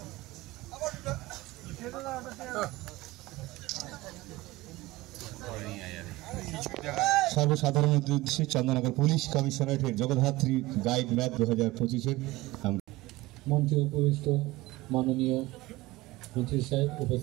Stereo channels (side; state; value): left; quieter; 19.4 dB